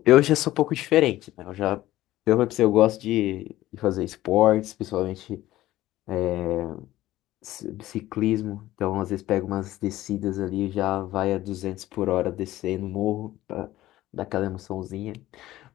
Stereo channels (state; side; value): quieter; right; 15.5 dB